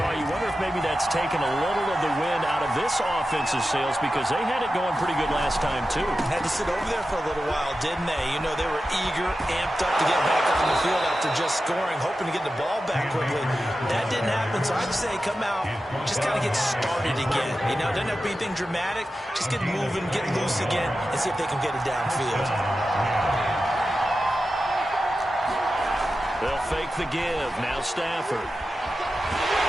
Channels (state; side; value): normal; both; correlation 0.92